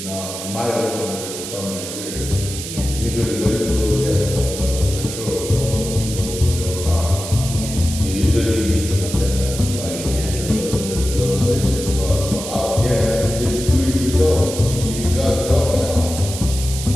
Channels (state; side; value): noise; right; hiss, 8 dB below the sound